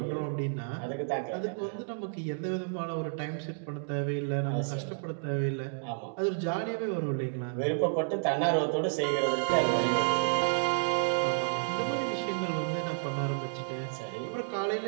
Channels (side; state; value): left; silent; digital silence